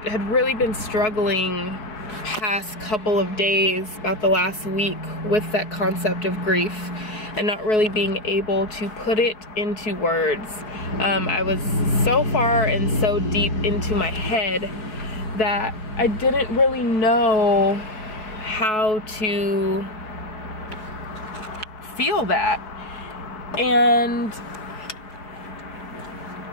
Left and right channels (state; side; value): late; right; 4.7 ms